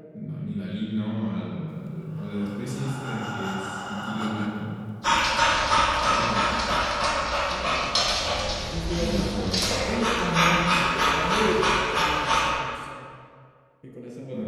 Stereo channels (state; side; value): identical; both; correlation 1.00